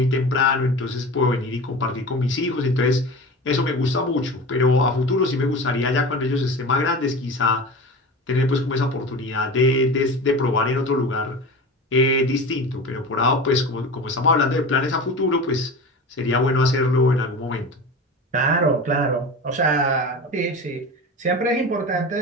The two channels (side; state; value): both; normal; correlation 0.31